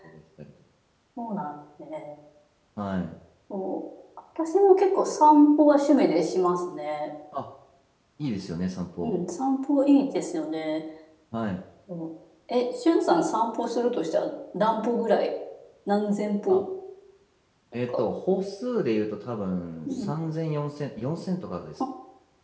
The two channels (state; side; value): identical; both; correlation 1.00